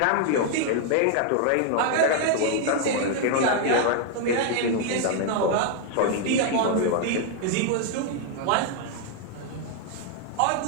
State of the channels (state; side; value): different; both; correlation 0.00